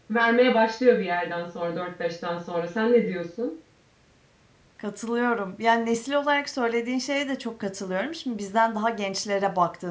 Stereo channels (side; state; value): both; identical; correlation 1.00